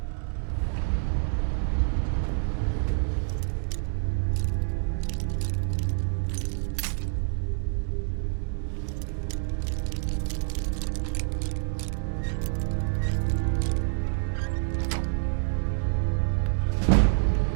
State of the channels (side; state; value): left; silent; 57 dB below the other